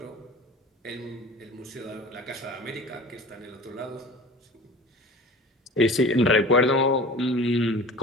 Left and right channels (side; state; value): both; normal; correlation 0.39